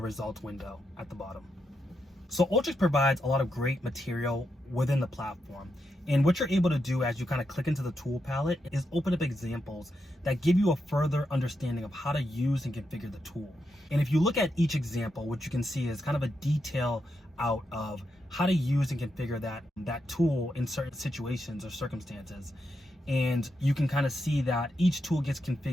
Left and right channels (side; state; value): both; normal; correlation 0.84